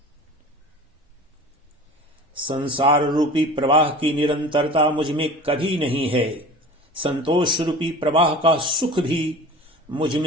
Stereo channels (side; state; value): both; normal; correlation 0.38